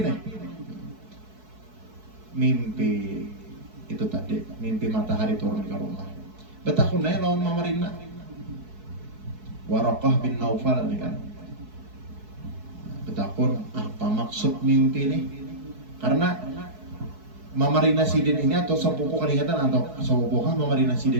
nih. Mimpi itu tadi, mimpi matahari turun ke rumah. Betakunnya lawan Mama Rina. Waraqah bin Naufal nih kan. Betakun apa maksud mimpi ini? Karena Mama Rina Sidin ini atau sepupu keringatan atau sepupu Mama Rina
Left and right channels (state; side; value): late; left; 4.6 ms